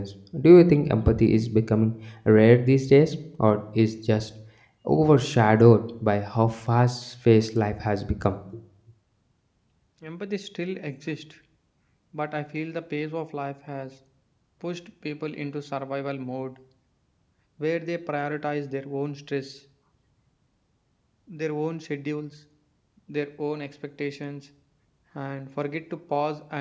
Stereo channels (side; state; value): both; identical; correlation 1.00